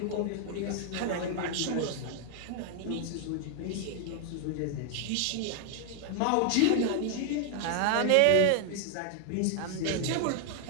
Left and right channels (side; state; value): both; different; correlation 0.00